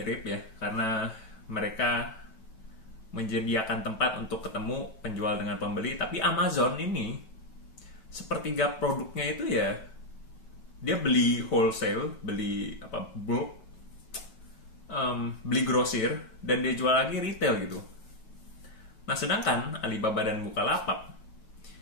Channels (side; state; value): right; late; 9.1 ms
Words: ya, karena mereka menyediakan tempat untuk ketemu penjual dengan pembeli, tapi Amazon ini sepertiga produknya itu ya dia beli wholesale, beli bulk, beli grosir, dan dia jual lagi retail gitu. Nah, sedangkan Alibaba dan Bukalapak